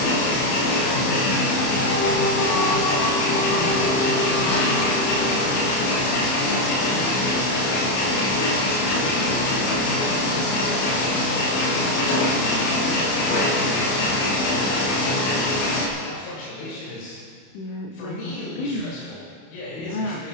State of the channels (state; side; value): late; right; 31 ms